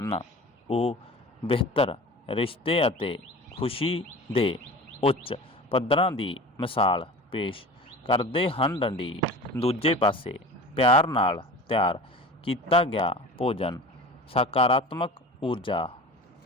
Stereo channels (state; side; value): normal; both; correlation 0.36